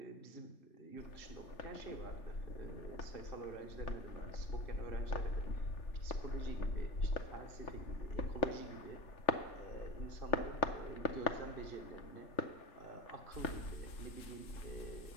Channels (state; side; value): late; right; 3.4 ms